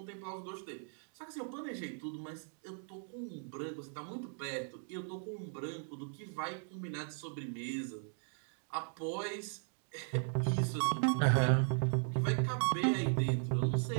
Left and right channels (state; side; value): silent; left; 53 dB below the other